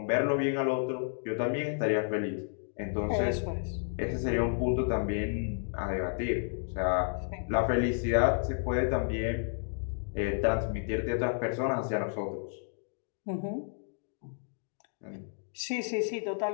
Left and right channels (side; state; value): right; silent; digital silence